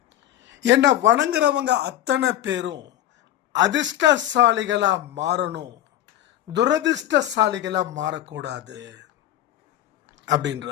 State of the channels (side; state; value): right; quieter; 12.5 dB